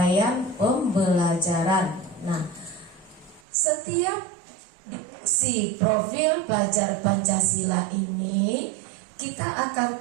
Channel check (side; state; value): left; drops out; at 3.4 s